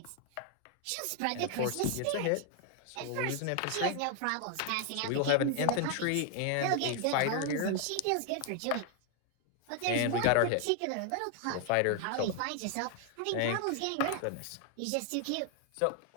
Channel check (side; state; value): both; different; correlation 0.00